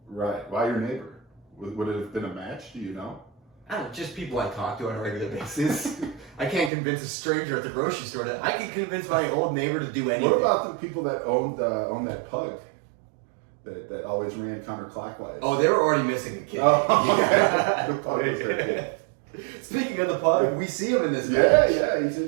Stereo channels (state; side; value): drops out; left; at 6.7 s